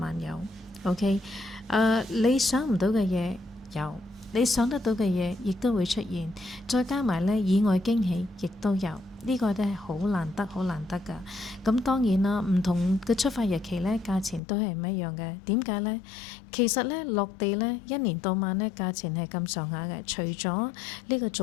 有。OK，你想唔到嘅嘢有，你想得到嘅嘢亦都會出現，再加埋呢，意外驚喜亦都有。呢個都係好難得㗎。咁當然啦，唔同嘅出發日期呢，價錢都係唔一樣嘅。點解呢？其實呢，落地呢，一年到晚呢，價錢係咁上下嘅。除咗呢個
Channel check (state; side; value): drops out; right; at 14.4 s